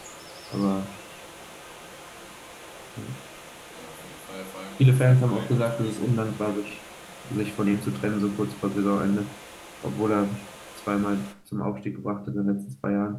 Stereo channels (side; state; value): both; identical; correlation 1.00